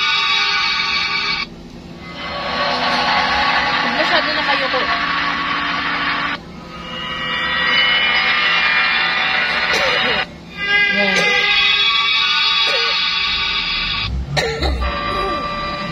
Pag masyado na kayo ko. Yan.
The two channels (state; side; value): identical; both; correlation 1.00